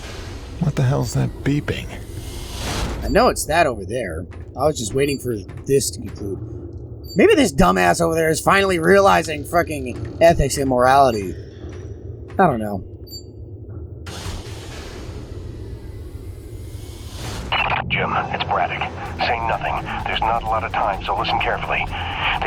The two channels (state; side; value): identical; both; correlation 1.00